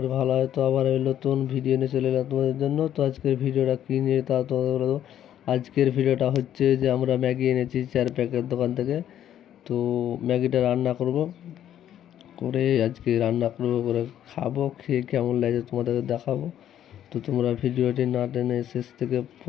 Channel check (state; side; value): quieter; right; 10.9 dB